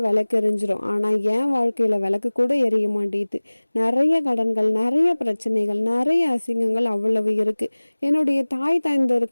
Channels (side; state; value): both; inverted; correlation -1.00